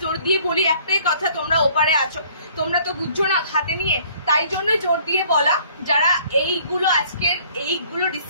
জোর দিয়ে বলি একটাই কথা, তোমরা ওপারে আছো, তোমরা তো বুঝছো না হাতে নিয়ে, তাই জন্য জোর দিয়ে বলা। যারা এইগুলো আজকের এইগুলো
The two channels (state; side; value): inverted; both; correlation -0.57